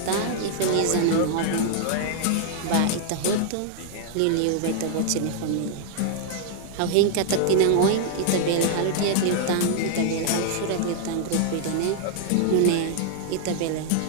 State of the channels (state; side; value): different; both; correlation 0.00